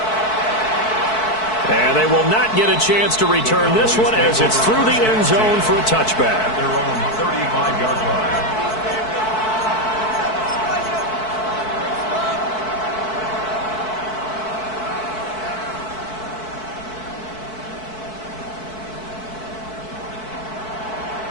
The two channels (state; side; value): late; right; 4.6 ms